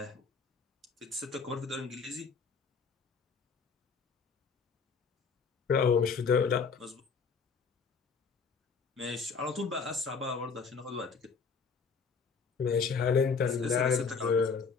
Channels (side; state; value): right; quieter; 5.3 dB